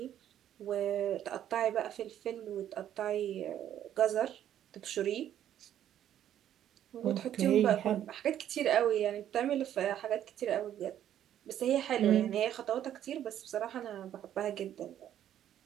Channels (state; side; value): quieter; left; 10.8 dB